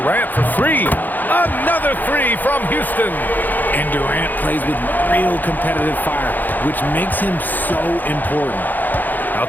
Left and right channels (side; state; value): right; late; 0.086 ms